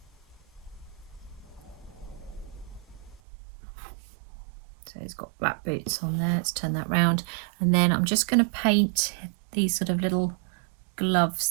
So he's got black boots on there. Let's turn that round. And then I'm just going to paint these sort of little gloves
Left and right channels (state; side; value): drops out; left; at 3.2 s